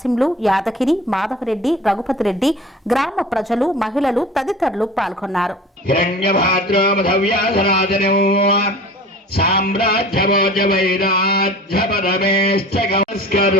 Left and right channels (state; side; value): normal; both; correlation 0.41